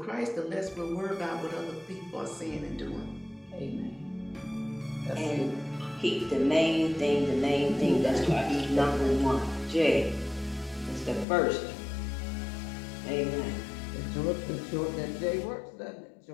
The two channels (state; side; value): drops out; right; at 11.2 s